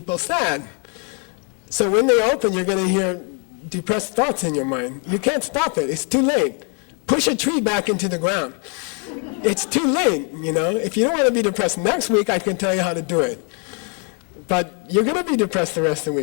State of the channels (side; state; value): right; quieter; 39.2 dB